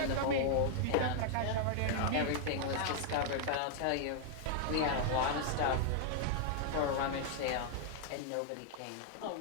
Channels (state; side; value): different; both; correlation 0.00